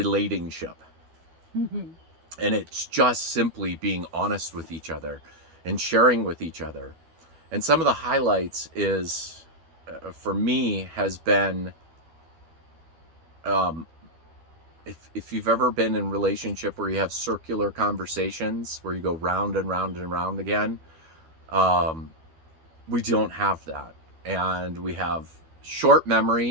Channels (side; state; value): left; late; 12 ms